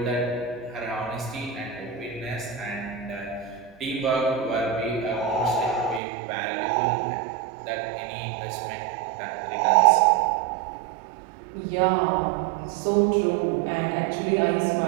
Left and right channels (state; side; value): drops out; left; at 6.0 s